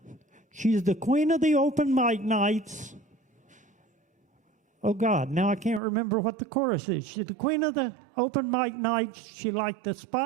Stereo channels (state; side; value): drops out; left; at 5.8 s